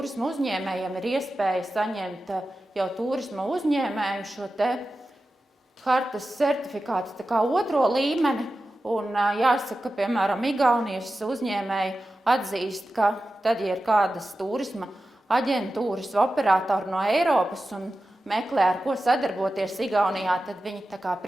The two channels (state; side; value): normal; both; correlation 0.93